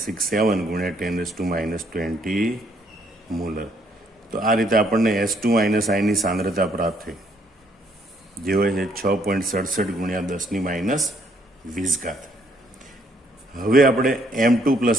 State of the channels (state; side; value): normal; both; correlation 0.68